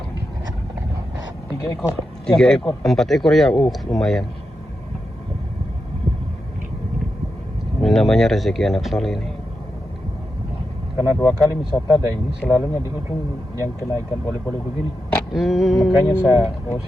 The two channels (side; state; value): both; normal; correlation 0.88